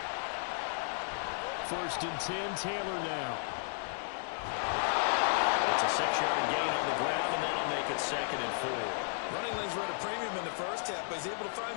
First and 10, Taylor now. It's a 6-yard gain on the ground, and that'll make it second and 4. Running lanes were at a premium in the first half, but he's able to find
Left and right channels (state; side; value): silent; right; 55 dB below the other